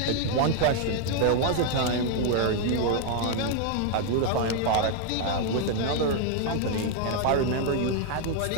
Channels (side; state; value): both; different; correlation 0.00